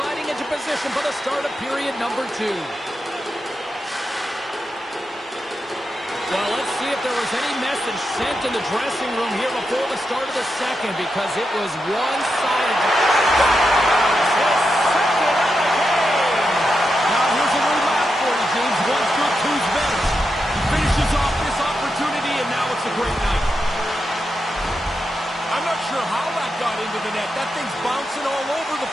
into position for the start of period number 2. Well, let's see if there was any message sent in the dressing room here before the start of the second, because it was one-sided. His second of the game. Now here's a little math for you, James. One's good, two's better. He finishes off this opportunity, and now it's a great night. I'm not sure how that got into the net. That thing's bouncing all over the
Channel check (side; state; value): both; normal; correlation 0.87